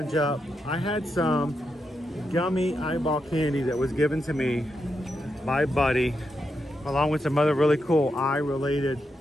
up. I had some gummy eyeball candy that was given to me by Buddy, along with some other really cool eye-related,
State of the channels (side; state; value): both; normal; correlation 0.84